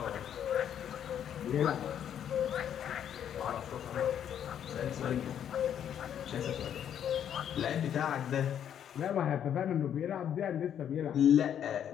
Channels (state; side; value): quieter; right; 9.4 dB